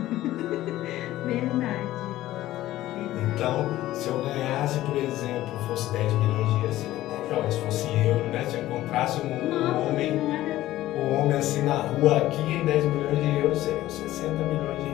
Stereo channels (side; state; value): right; quieter; 15.1 dB